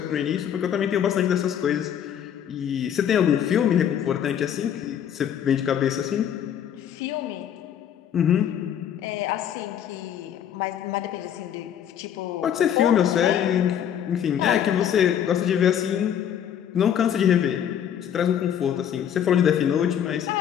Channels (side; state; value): right; quieter; 9.4 dB